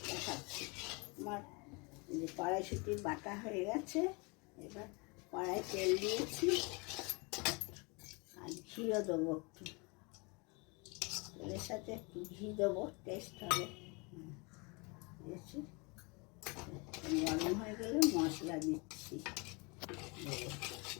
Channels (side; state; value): right; quieter; 29.5 dB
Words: দেখাচ্ছি। আমার যে কড়াইশুঁটি বাটা হয়ে গেছে, এবার কড়াই তেল দিয়েছি আর ঘিও দেবো একটু, তেলের সাথে একটু ঘি দেবো, টেস্ট হবে। দিয়েছি, গরম হয়ে গেলে মশলা দিচ্ছি,